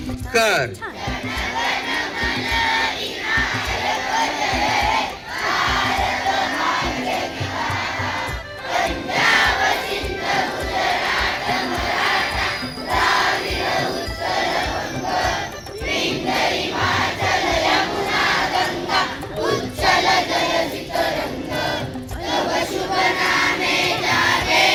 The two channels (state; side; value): identical; both; correlation 1.00